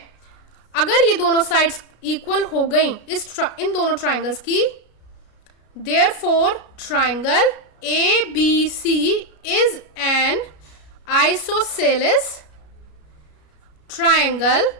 अगर ये दोनों साइड्स इक्वल हो गई इन दोनों ट्राइंगल्स की, therefore triangle ABC is an isosceles triangle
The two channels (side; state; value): right; late; 33 ms